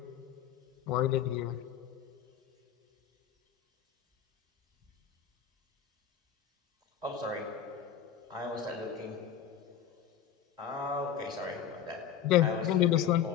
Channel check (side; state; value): right; quieter; 9.1 dB